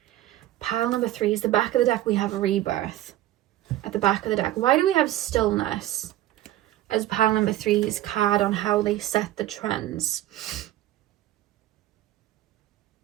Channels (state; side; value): quieter; left; 14.3 dB